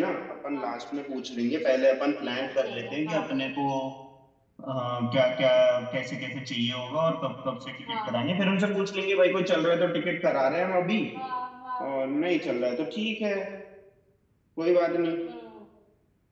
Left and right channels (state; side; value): identical; both; correlation 1.00